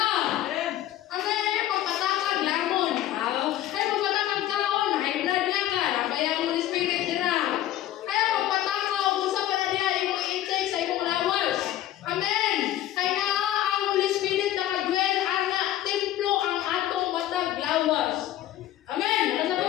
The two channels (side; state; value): right; quieter; 13.2 dB